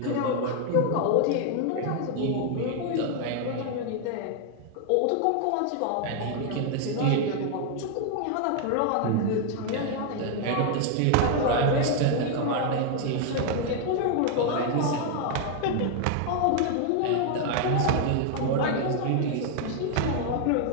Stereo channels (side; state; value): both; different; correlation 0.00